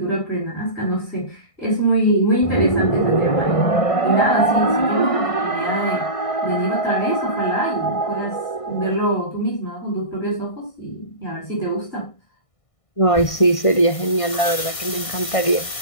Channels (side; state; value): right; late; 1.6 ms